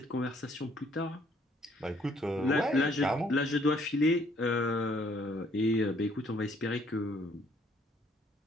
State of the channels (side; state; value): both; normal; correlation 0.64